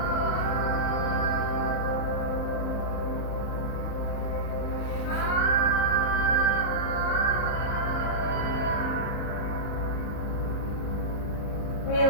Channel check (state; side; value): late; right; 39 ms